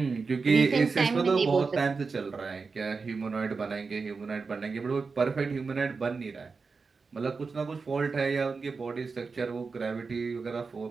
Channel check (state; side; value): quieter; left; 4.6 dB